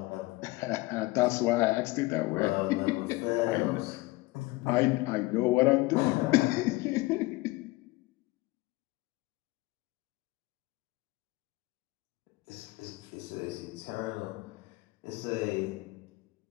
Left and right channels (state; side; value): quieter; right; 20.9 dB